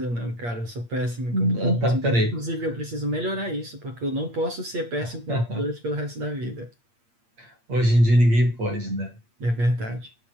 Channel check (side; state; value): left; late; 8.6 ms